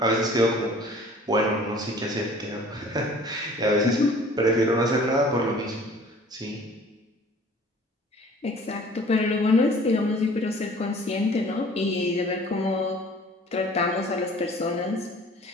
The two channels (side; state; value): both; normal; correlation 0.49